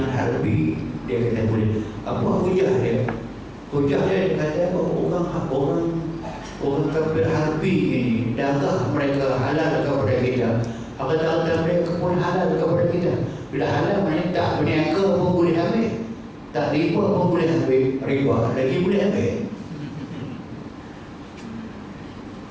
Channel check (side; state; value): both; identical; correlation 1.00